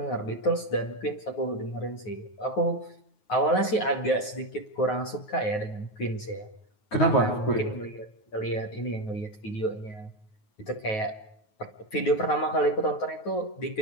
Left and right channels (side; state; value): right; late; 9.4 ms